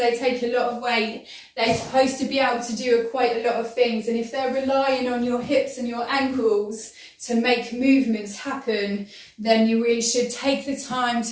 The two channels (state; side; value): identical; both; correlation 1.00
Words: take a lot of weight. They're supposed to be able to do quite a lot of things, and if they're relying on your hips and your ankles to make movements happen, then you really should take the time